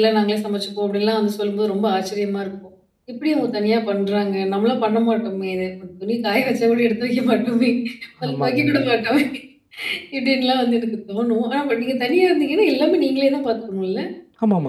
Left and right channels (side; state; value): both; identical; correlation 1.00